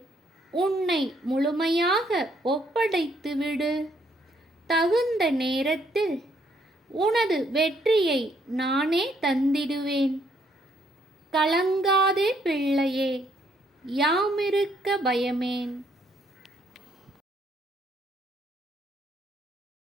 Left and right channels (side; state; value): both; normal; correlation 0.70